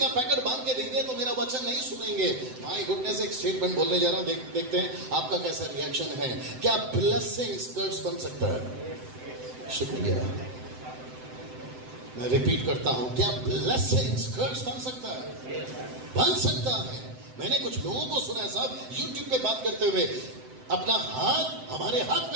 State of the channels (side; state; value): left; late; 7.8 ms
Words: पैकेट बांध के दे दिया तो मेरा वचन नहीं सुनेंगे। माय गुडनेस, एक स्टेटमेंट बोलने जा रहा हूं, देखते हैं आपका कैसा रिएक्शन है। क्या ब्लेसिंग स्कर्ट्स बन सकता है? शुक्रिया, मैं रिपीट करता हूं, क्या ब्लेसिंग स्कर्ट्स बन सकता है? बन सकता है। मैंने कुछ लोगों को सुना है साहब, यूट्यूब पे बात करते हुए, अपना हाथ हमारे हाथ